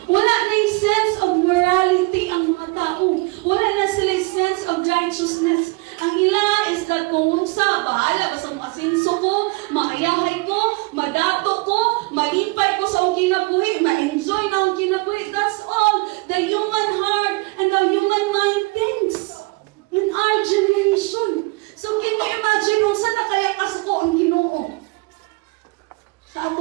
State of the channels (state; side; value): quieter; left; 26.3 dB